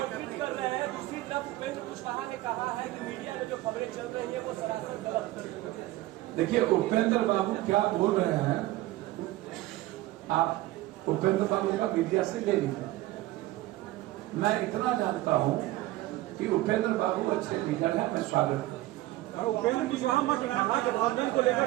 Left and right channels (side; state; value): left; quieter; 17.1 dB